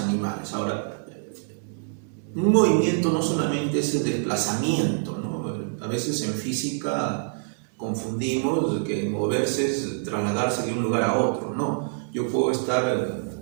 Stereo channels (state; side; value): silent; left; digital silence